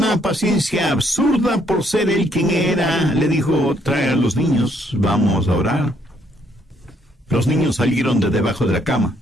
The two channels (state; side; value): normal; both; correlation 0.70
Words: paciencia absurda por ser él quien era, le dijo: «Trae a los niños, vamos a orar». Los niños salieron de debajo de la cama,